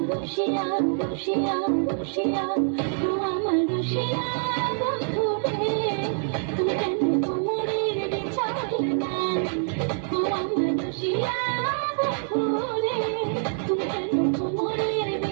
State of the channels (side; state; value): left; silent; 61 dB below the other